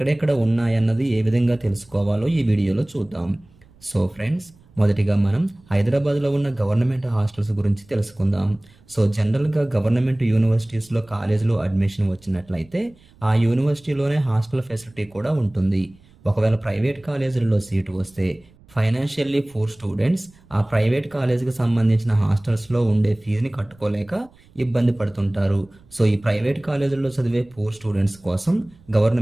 ఉన్నాయన్నది ఏ విధంగా తెలుసుకోవాలో ఈ వీడియోలో చూద్దాం. సో ఫ్రెండ్స్, మొదటిగా మనం హైదరాబాద్లో ఉన్న గవర్నమెంట్ హాస్టల్స్ గురించి తెలుసుకుందాం. సో జనరల్గా గవర్నమెంట్ యూనివర్సిటీస్లో కాలేజీలో అడ్మిషన్ వచ్చినట్లయితే ఆ యూనివర్సిటీలోనే హాస్టల్ ఫెసిలిటీ కూడా ఉంటుంది. ఒకవేళ ప్రైవేట్ కాలేజీలలో సీటు వస్తే ఫైనాన్షియల్లీ పూర్ స్టూడెంట్స్ ఆ ప్రైవేట్ కాలేజీకి సంబంధించిన హాస్టల్స్లో ఉండే ఫీజుని కట్టుకోలేక ఇబ్బంది పడుతుంటారు. సో ఈ ప్రైవేట్ కాలేజీల్లో చదివే పూర్ స్టూడెంట్స్ కోసం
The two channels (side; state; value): right; noise; rumble, 28 dB below the sound